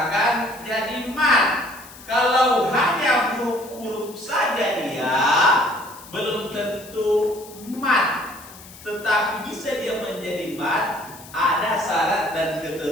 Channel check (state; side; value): noise; left; hiss, 19 dB below the sound